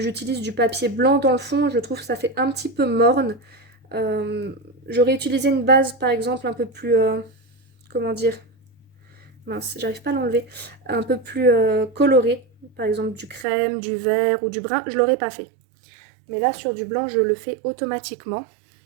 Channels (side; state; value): left; drops out; at 13.5 s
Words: du papier blanc dans le fond, je trouve que ça fait un petit peu morne. J'aurais utilisé une base par exemple un peu plus, comment dire, mince, j'arrive pas à l'enlever, un peu plus colorée, par exemple du crème, du vert ou du brun, je l'aurais pas fait. Mais là sur du blanc, je le fais automatiquement.